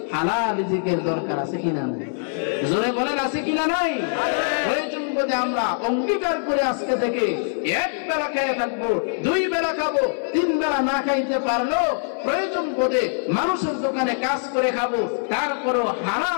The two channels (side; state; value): right; silent; 63 dB below the other